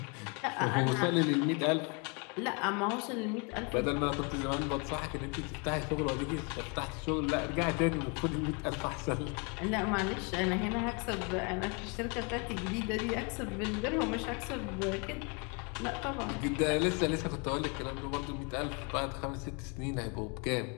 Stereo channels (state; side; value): quieter; right; 33.5 dB